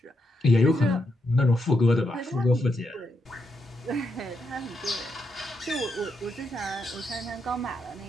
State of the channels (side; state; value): both; normal; correlation 0.81